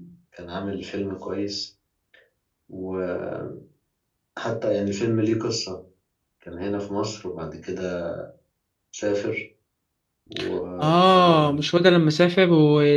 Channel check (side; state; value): both; identical; correlation 1.00